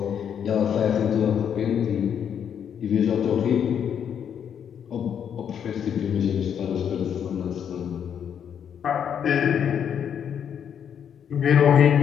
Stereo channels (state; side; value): quieter; right; 8.4 dB